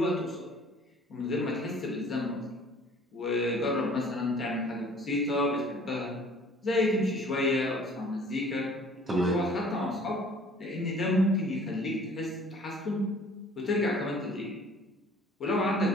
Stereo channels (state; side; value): normal; both; correlation 0.52